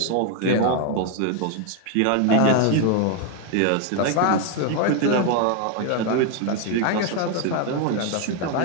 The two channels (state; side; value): different; both; correlation 0.01